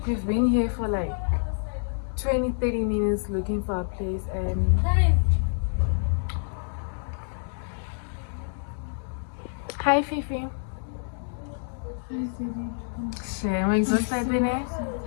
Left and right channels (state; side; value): silent; right; digital silence